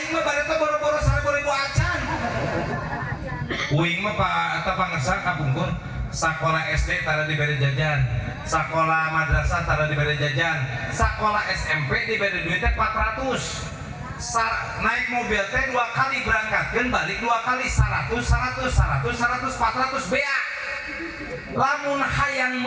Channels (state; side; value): identical; both; correlation 1.00